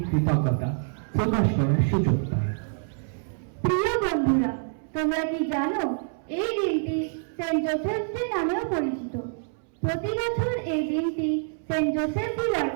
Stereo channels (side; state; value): left; silent; 61 dB below the other